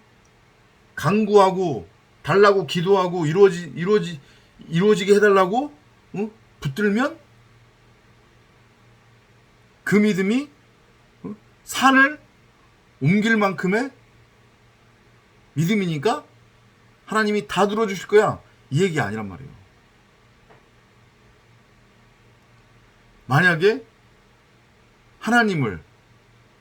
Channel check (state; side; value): identical; both; correlation 1.00